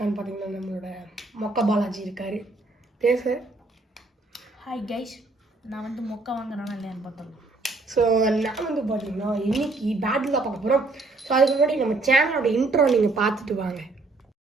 பார்த்தீங்கன்னா, நம்மளோட மொக்க பாலாஜி இருக்கார். பேச ஹாய் கைஸ், நான் வந்து மொக்க வாங்குறேன்னா இல்லையான்னு பார்த்தோம். ஸோ நான் வந்து பார்த்தீங்கன்னா இன்றைக்கி பேட்டில் தான் பார்க்க போகிறோம். ஸோ அதுக்கு முன்னாடி நம்ம சேனலோட இன்ட்ரோ நீங்கள் பார்த்துட்டு வாங்க.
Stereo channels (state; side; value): quieter; left; 3.3 dB